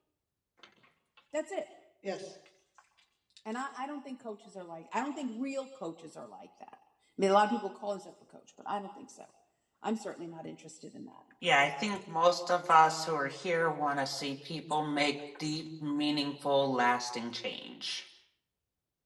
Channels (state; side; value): identical; both; correlation 1.00